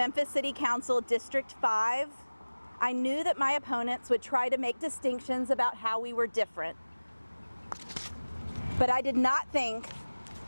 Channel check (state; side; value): inverted; both; correlation -1.00